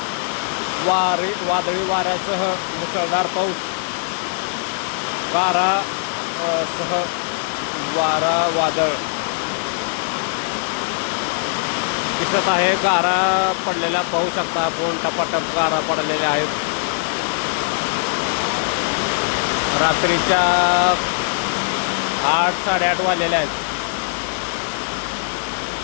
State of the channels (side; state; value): right; silent; digital silence